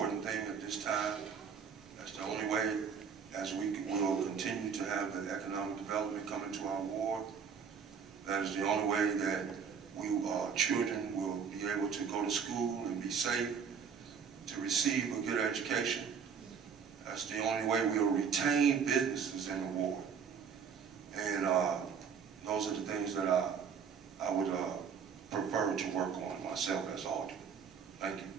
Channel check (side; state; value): left; quieter; 6.7 dB